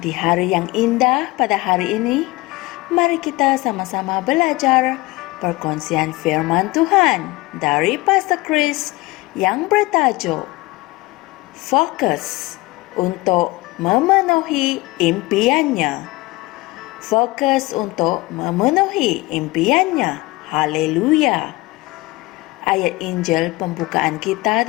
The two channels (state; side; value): quieter; right; 21.2 dB